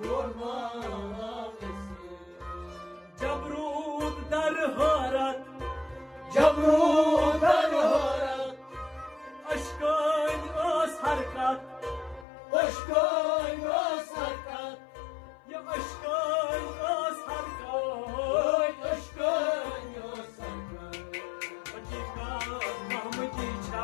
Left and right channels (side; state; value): right; drops out; at 12.2 s